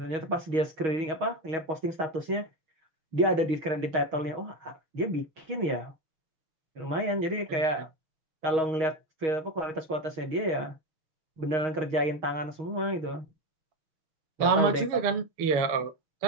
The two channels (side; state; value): left; late; 6.4 ms